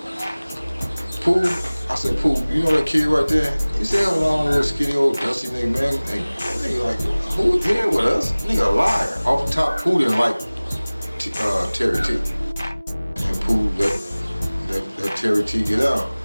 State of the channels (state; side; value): inverted; both; correlation -0.99